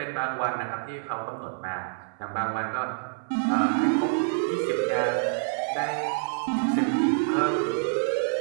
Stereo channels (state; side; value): silent; left; 60 dB below the other